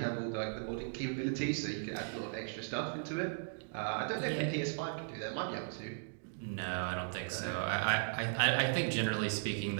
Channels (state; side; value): silent; left; digital silence